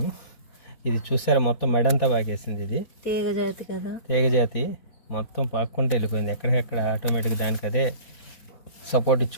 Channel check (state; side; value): late; right; 4.1 ms